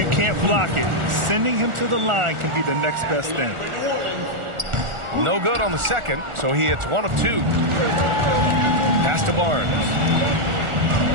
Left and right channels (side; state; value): left; late; 1.4 ms